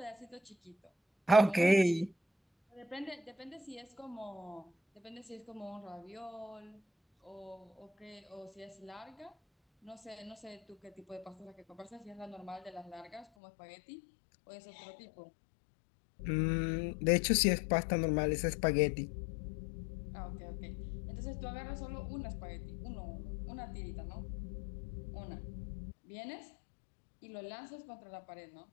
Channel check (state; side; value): drops out; right; at 13.2 s